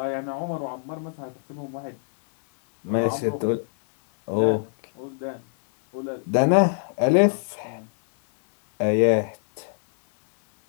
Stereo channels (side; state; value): right; silent; 63 dB below the other